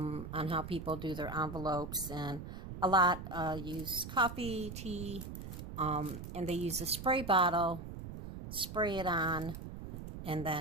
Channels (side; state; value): right; noise; rumble, 9 dB below the sound